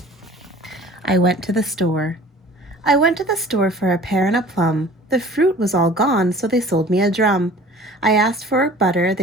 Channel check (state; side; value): normal; both; correlation 0.46